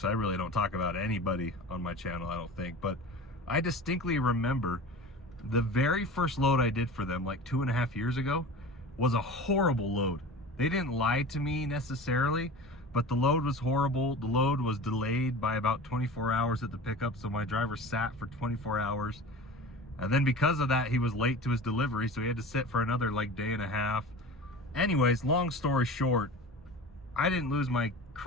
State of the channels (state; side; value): normal; both; correlation 0.35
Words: really don't talk about anybody on my channel, I don't think, but I distinctly remember the very first load I did for them like 2.5 years ago was a horrible load. They didn't lie to me necessarily, but the load was horrible. The load was delayed by about 24 hours at the pickup, so my driver sat for 24 hours. And then because of that, he was late to his delivery, so he had to sit for another like day and a half. Anyways, long story short, I didn't lose my